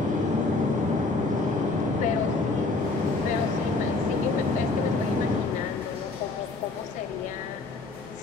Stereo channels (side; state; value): right; quieter; 3.6 dB